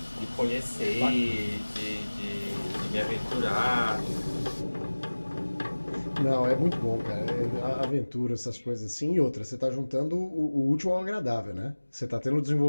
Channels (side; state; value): both; inverted; correlation -1.00